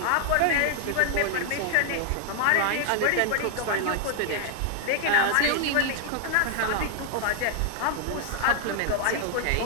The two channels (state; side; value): different; both; correlation 0.00